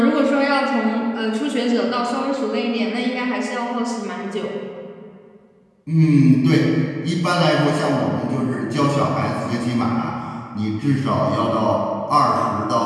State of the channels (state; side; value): identical; both; correlation 1.00